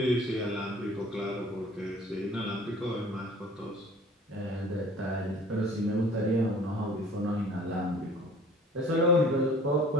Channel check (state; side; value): normal; both; correlation 0.49